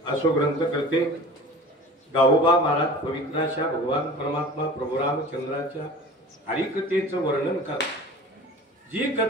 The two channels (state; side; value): normal; both; correlation 0.40